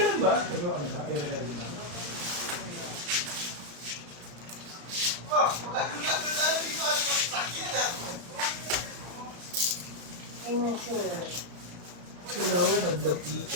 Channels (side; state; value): left; late; 34 ms